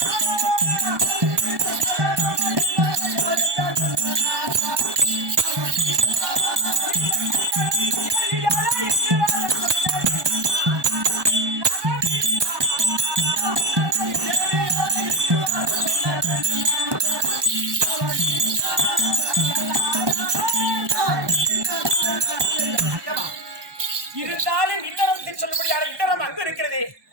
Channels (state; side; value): late; left; 1.2 ms